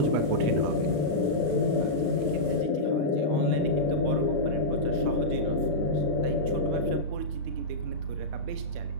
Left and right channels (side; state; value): left; late; 34 ms